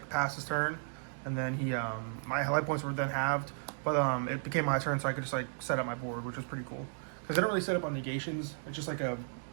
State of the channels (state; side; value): silent; left; digital silence